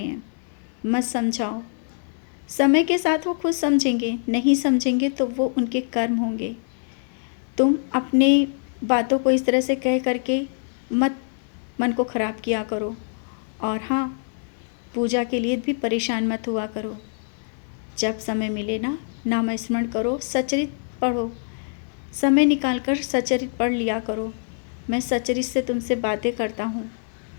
मत समझाओ। समय के साथ वो खुद समझेंगे, नहीं समझेंगे तो वो उनके कर्म होंगे। तुम अपने बातों को इस तरह से कह करके मत मन को ख़राब किया करो। और हाँ, पूजा के लिए भी परेशान मत हुआ करो। जब समय मिले ना, नाम स्मरण करो, सचरित पढ़ो, समय निकाल कर सचरित पढ़ लिया करो। मैं सचरित से तुमसे बातें करता हूँ।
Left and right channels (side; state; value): right; silent; 62 dB below the other